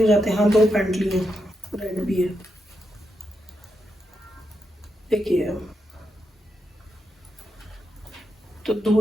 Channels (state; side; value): normal; both; correlation 0.84